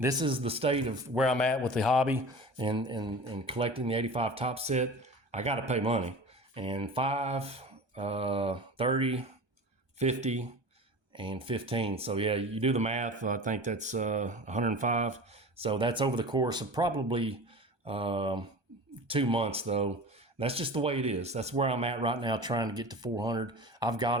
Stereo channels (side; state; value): left; late; 1.2 ms